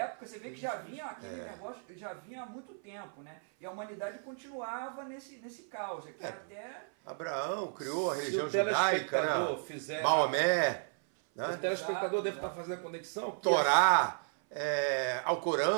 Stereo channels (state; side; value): silent; left; 55 dB below the other